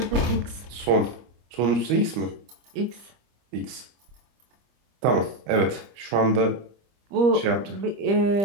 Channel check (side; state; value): left; late; 25 ms